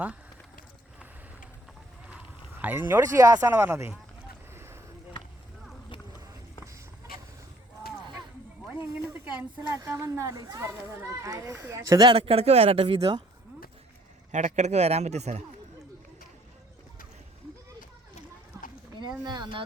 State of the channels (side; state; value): both; normal; correlation 0.60